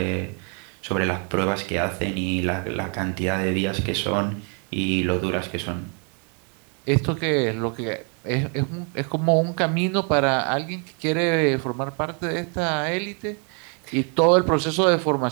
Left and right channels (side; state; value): left; quieter; 38.8 dB